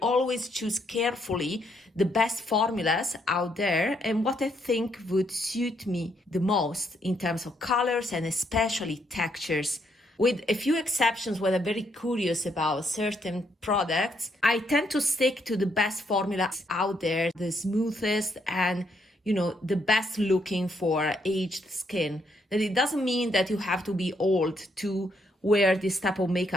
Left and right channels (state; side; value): normal; both; correlation 0.73